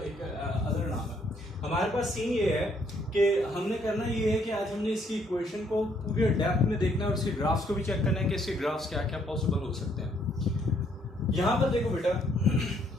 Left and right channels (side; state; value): both; normal; correlation 0.68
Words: एक अदर नाम है। हमारे पास सीन ये है कि हमने करना ये है कि आज हमने इसकी इक्वेशन को पूरे डेप्थ में देखना है और इसके ग्राफ्स को भी चेक करना है कि इसके ग्राफ्स क्या क्या पॉसिबल हो सकते हैं। यहां पर देखो बेटा,